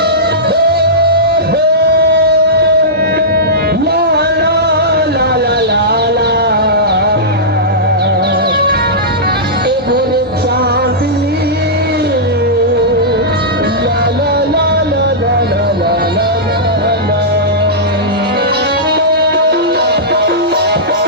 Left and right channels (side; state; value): both; normal; correlation -0.15